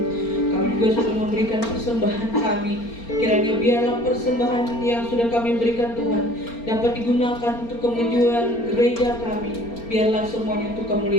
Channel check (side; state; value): right; late; 4.3 ms